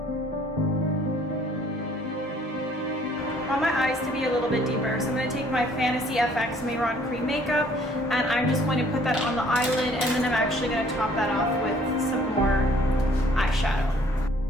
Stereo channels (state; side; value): normal; both; correlation 0.59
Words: I want my eyes to be a little bit deeper, so I'm going to take my Fantasy FX Mehron cream makeup and I'm just going to put that on the eyelid, and then I'm actually going to top that off with some more eyeshadow.